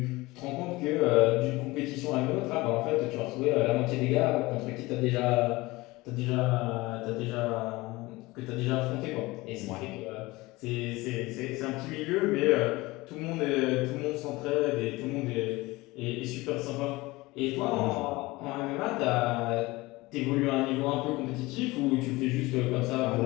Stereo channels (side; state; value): right; quieter; 21.1 dB